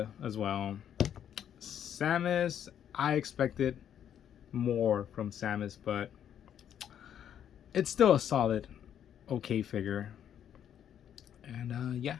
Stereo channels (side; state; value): right; quieter; 9.6 dB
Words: as well. Samus, I expected more from Samus, but it's still a solid, okay figure. And yeah,